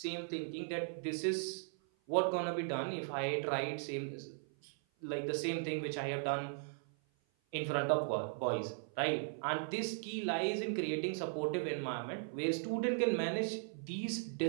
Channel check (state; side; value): silent; left; 52 dB below the other